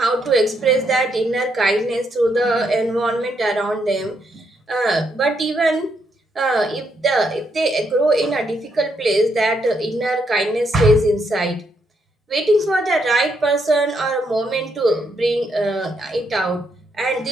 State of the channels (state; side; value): normal; both; correlation 0.77